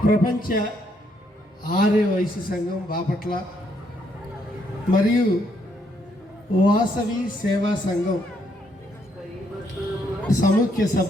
ప్రపంచ ఆర్య వైశ్య సంఘం బాపట్ల మరియు వాసవి సేవా సంఘం సముఖ్య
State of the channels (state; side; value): normal; both; correlation 0.73